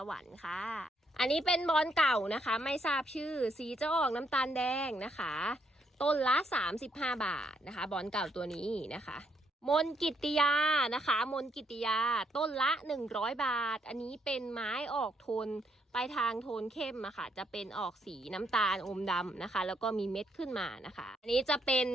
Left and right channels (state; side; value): normal; both; correlation 0.74